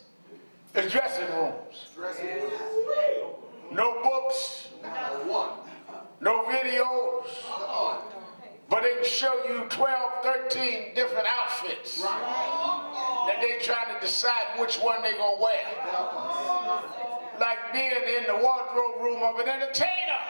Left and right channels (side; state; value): both; inverted; correlation -1.00